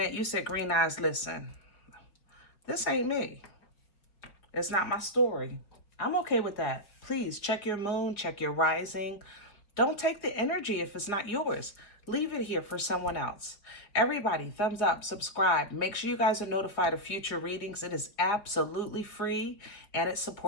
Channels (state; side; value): late; right; 4.8 ms